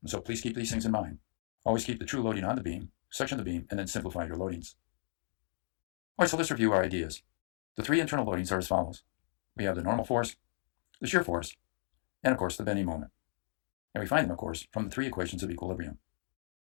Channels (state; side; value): silent; right; digital silence